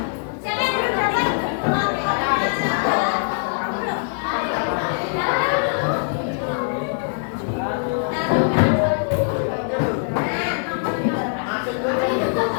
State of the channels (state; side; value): silent; right; digital silence